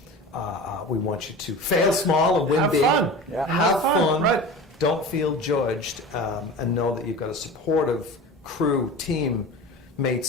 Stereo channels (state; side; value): normal; both; correlation 0.34